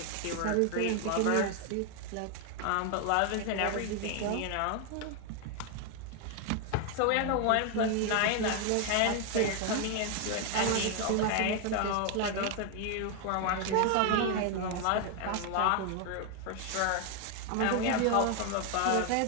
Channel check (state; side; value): different; both; correlation 0.01